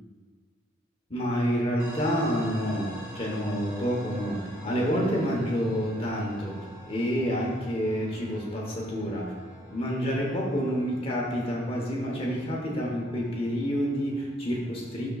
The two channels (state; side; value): normal; both; correlation 0.67